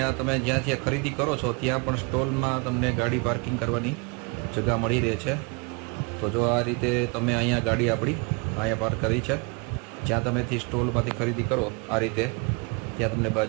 આ તમે જ્યાંથી ખરીદી કરો છો ત્યાં પણ સ્ટોલમાં તમને ગાડી પાર્કિંગ કરવાની જગ્યા મળી રહે છે. તો જો આ રીતે તમે અહીંયા ગાડી આપણી અહીંયા પાર્ક કરી છે જ્યાં તમેથી સ્ટોલમાંથી ખરીદી કરો આ રીતે ત્યાં તમને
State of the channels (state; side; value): quieter; left; 30.1 dB